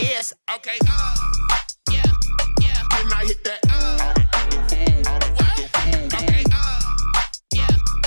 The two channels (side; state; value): both; inverted; correlation -1.00